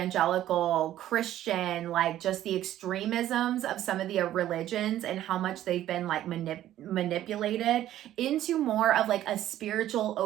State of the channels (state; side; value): quieter; left; 12.8 dB